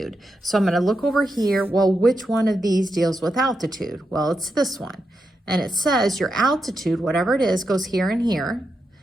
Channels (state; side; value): normal; both; correlation 0.86